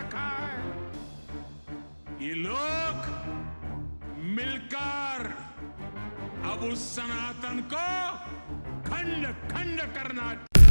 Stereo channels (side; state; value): both; inverted; correlation -1.00